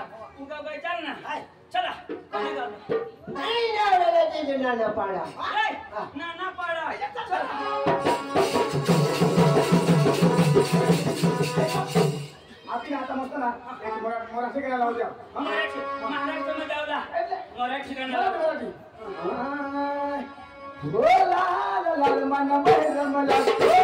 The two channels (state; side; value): identical; both; correlation 1.00